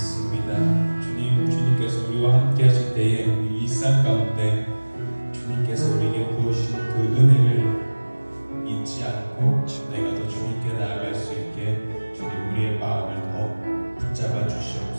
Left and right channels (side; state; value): both; inverted; correlation -1.00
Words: 주님께서 우리와 함께 하실 때에 우리 일상 가운데 주님께서 우리에게 부으신 그 은혜를 잊지 않고 내가 더 주님께 나아갈 수 있게 주님, 우리의 마음을 더 붙잡아